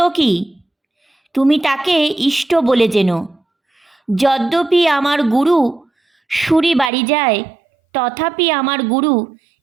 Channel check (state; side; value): drops out; left; at 6.9 s